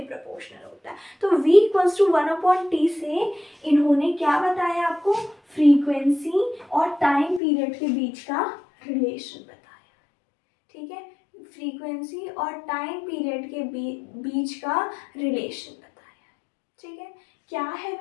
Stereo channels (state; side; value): drops out; right; at 7.4 s